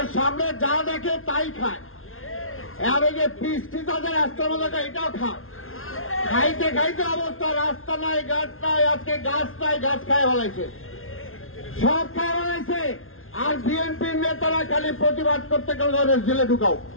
সামনে যা দেখে তাই খায়। আর ওই যে পিস্টি তাদের রাস্তার মধ্যে এটাও খায়। খাইতে খাইতে অবস্থা, রাস্তা নাই, গাছ নাই, আজকে গাছ নাই, গাছ খায় ফেলাইছে, সব খায় ফেলাইছে। আর বিএনপির নেতারা খালি প্রতিবাদ করতে গেলে জেলে ঢুকাও,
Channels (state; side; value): late; right; 0.61 ms